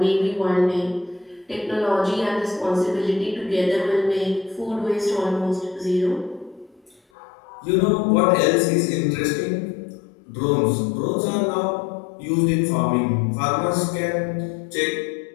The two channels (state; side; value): drops out; right; at 7.0 s